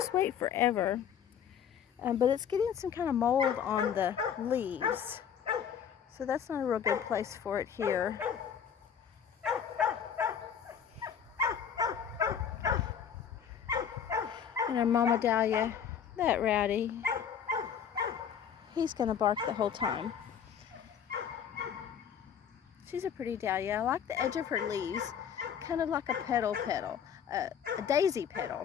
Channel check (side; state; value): right; quieter; 8.1 dB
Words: wait forever. But it's getting some kind of mold on the leaves. So that's not a real good place for it here. And our Mama Dahlia, that rowdy, he's going to bark the whole time. She's a pretty dahlia. I like the edge of her leaves, kind of like a petal, a daisy